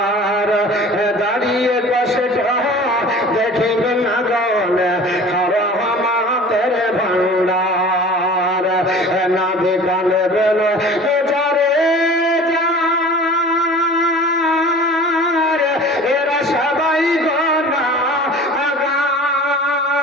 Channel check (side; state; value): both; normal; correlation 0.42